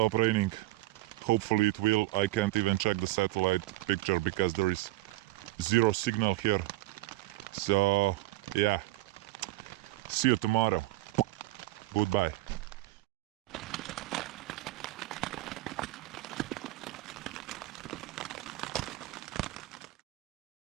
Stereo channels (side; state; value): left; quieter; 18.9 dB